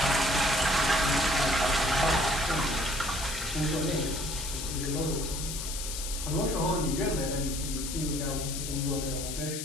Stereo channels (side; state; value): left; noise; hiss, 6 dB below the sound